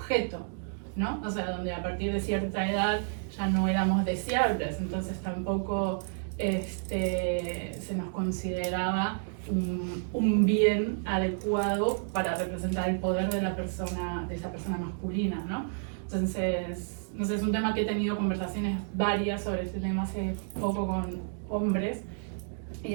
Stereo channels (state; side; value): silent; left; digital silence